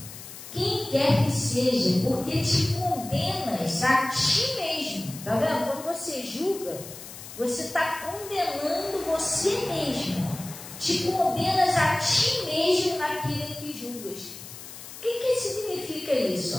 quem quer que seja, porque te condenas a ti mesmo. Está vendo? Quando você julga, você está condenando você mesmo. Te condenas a ti mesmo naquilo que julgas. O que significa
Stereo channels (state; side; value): noise; left; hiss, 14 dB below the sound